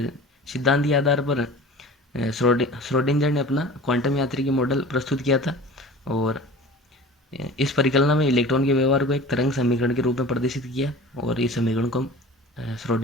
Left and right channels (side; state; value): both; normal; correlation 0.40